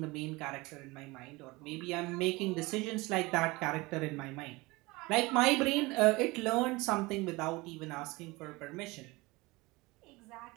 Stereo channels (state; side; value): quieter; left; 22.9 dB